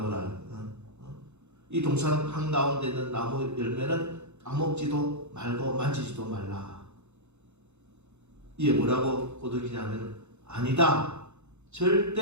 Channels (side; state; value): left; late; 0.82 ms